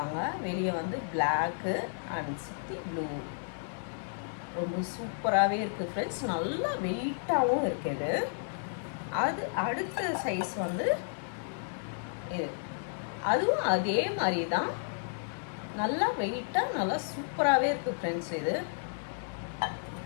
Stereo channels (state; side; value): silent; right; digital silence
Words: வெளியே வந்து பிளாக்கு அண்ட் சுற்றி ப்ளூ. ரொம்ப சூப்பராகவே இருக்குது ஃப்ரெண்ட்ஸ். நல்லா வெயிட்டாகவும் இருக்குது. அது அடுத்த சைஸ் வந்து இது, அதுவும் அதே மாதிரி தான், நல்லா வெயிட்டாக நல்லா சூப்பராகவே இருக்குது ஃப்ரெண்ட்ஸ்.